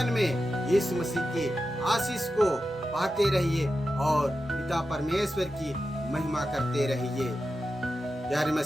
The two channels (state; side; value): normal; both; correlation 0.91